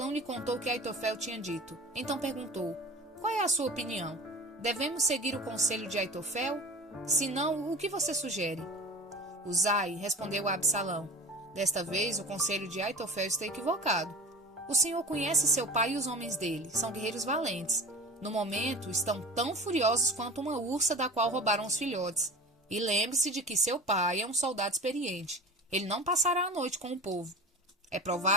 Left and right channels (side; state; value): both; normal; correlation 0.36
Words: lhe contou o que Aitofel tinha dito. Então perguntou: qual é a sua opinião? Devemos seguir o conselho de Aitofel? Se não, o que você sugere? Usai respondeu a Absalão: desta vez o conselho de Aitofel está equivocado. O Senhor conhece seu pai e os homens dele, são guerreiros valentes. No momento, estão tão furiosos quanto uma ursa da qual roubaram os filhotes. E lembre-se de que seu pai é um soldado experiente. Ele não passará a noite com o povo. É